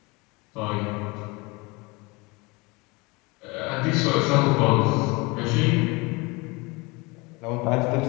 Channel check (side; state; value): right; quieter; 25.9 dB